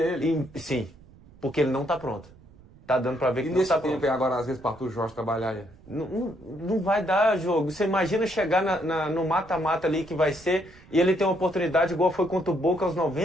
ele? Sim, porque ele não está pronto. Tá dando para ver que E não está nesse tempo pronto. agora, às vezes, para o Jorge trabalhar aí? Não vai dar jogo. Você imagina chegar no mata-mata ali que vai ser e ele tem uma oportunidade igual foi contra o Boca aos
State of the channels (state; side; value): noise; right; rumble, 24 dB below the sound